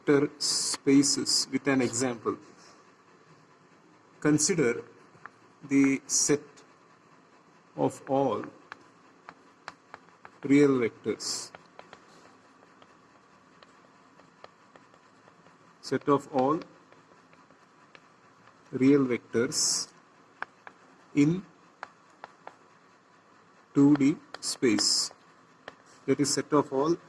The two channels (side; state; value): both; identical; correlation 1.00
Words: spaces with an example. Consider the set of all real vectors. Set of all real vectors in 2D space. That is, set of all